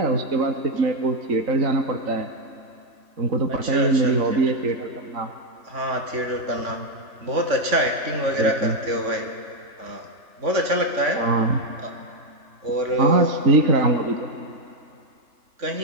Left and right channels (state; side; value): late; left; 3.5 ms